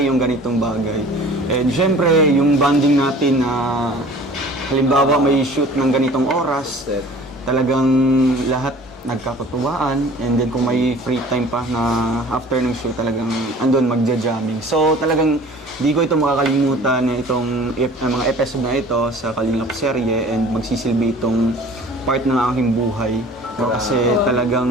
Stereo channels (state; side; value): normal; both; correlation 0.47